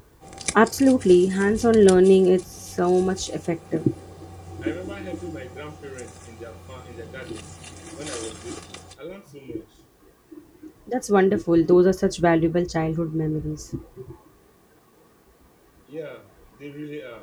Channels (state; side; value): identical; both; correlation 1.00